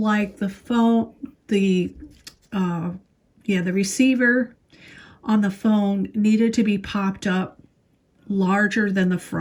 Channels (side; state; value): both; identical; correlation 1.00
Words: the receiver on the phone needed to be popped up larger than the